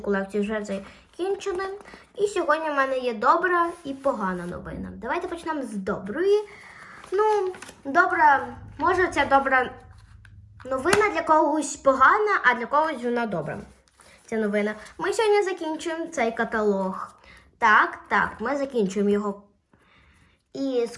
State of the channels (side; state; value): both; identical; correlation 1.00